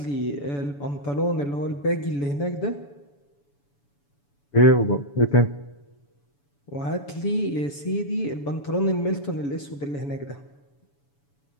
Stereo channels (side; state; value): right; late; 7.0 ms